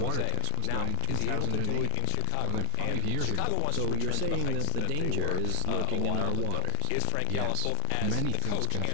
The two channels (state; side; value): different; both; correlation 0.00